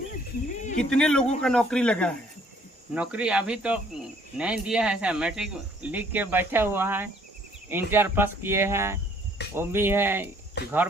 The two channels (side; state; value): both; normal; correlation 0.61